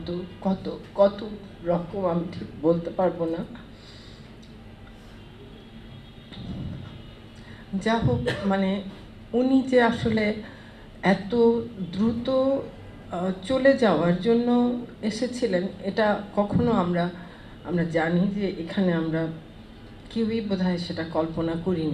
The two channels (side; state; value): both; identical; correlation 1.00